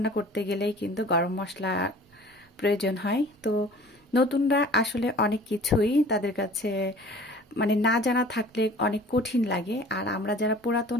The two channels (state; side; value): normal; both; correlation 0.46